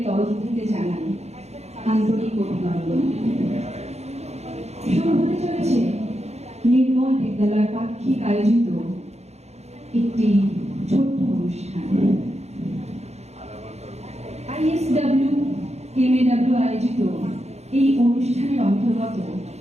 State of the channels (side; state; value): left; late; 0.31 ms